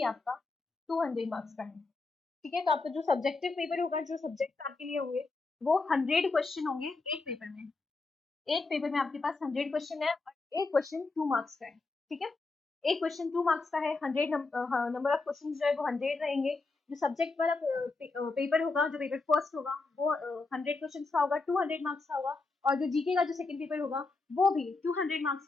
आपका 200 मार्क्स का है। ठीक है, तो आपका जो सब्जेक्टिव पेपर होगा, जो सब्जेक्ट आपके लिए होंगे वो 100 क्वेश्चन होंगे एक पेपर में। एक पेपर में आपके पास 100 क्वेश्चन है और एक क्वेश्चन 2 मार्क्स का है। ठीक है, एक क्वेश्चन 2 मार्क्स का है, 100 नंबर ऑफ क्वेश्चन जो है वो 100 रहेंगे। जो सब्जेक्ट वाला पेपर होगा, जो पेपर फर्स्ट होगा वो 100 क्वेश्चन का होगा, 200 मार्क्स का होगा। और जो जीके का जो सेकंड पेपर होगा वो भी 200 मार्क्स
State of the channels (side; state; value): right; quieter; 3.7 dB